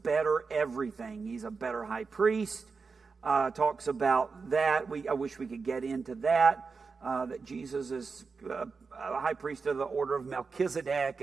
everything. He's a better high priest. Talks about that. I wish we could get into that. That Jesus is a high priest of the order of Melchizedek,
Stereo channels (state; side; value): quieter; left; 4.8 dB